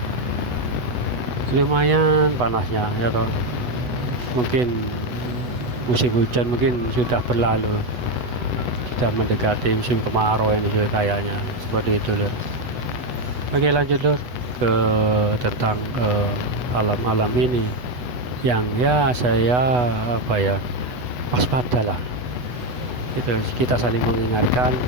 panasnya ya toh. Mungkin musim hujan mungkin sudah berlalu, sudah mendekati musim kemarau ini kayaknya seperti itu lur. Oke lanjut lur ke tentang alam-alam ini yang ya saya waspadalah. Kita saling mengingatkan,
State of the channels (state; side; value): late; left; 8.1 ms